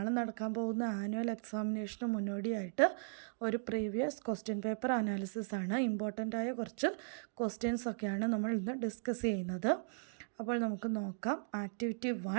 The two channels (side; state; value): left; silent; digital silence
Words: നടക്കാൻ പോകുന്ന ആനുവൽ എക്സാമിനേഷന് മുന്നോടിയായിട്ട് ഒരു പ്രീവിയസ് ക്വസ്റ്റ്യൻ പേപ്പർ അനാലിസിസ് ആണ്. ഇമ്പോർട്ടൻ്റ് ആയ കുറച്ച് ക്വസ്റ്റ്യൻസ് ഒക്കെയാണ് നമ്മൾ ഇന്ന് ഡിസ്കസ് ചെയ്യുന്നത്. അപ്പോൾ നമുക്ക് നോക്കാം. Activity